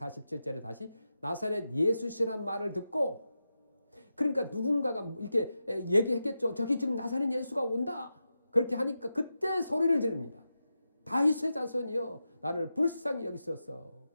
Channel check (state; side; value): inverted; both; correlation -0.90